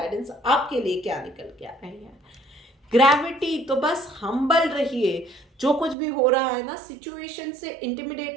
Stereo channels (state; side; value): drops out; left; at 6.0 s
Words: आपके लिए क्या निकल के आ रही है। ग्रेविटी, तो बस हम्बल रहिए, जो कुछ भी हो रहा है ना, सिचुएशन से